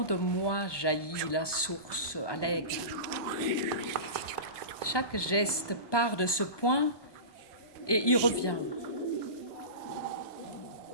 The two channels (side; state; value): right; late; 1.2 ms